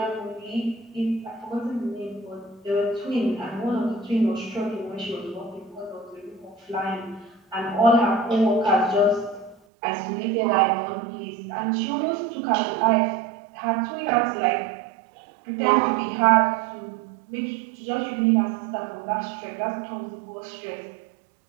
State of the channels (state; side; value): drops out; left; at 9.6 s